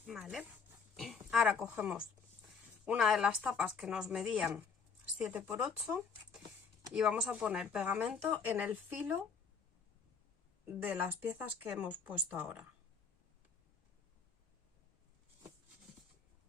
Vale, ahora cogemos una de las tapas que nos medían 7 por 8 y vamos a poner pegamento en el filo de las piezas que hemos puesto ahora.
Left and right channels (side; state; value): right; quieter; 5.5 dB